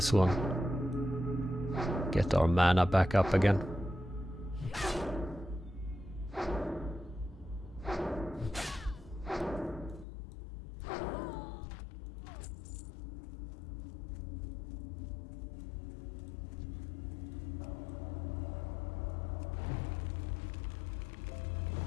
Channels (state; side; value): drops out; right; at 10.1 s